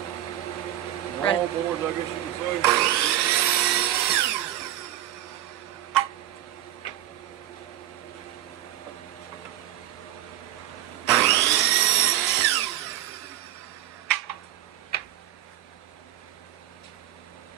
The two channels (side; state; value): left; quieter; 13.0 dB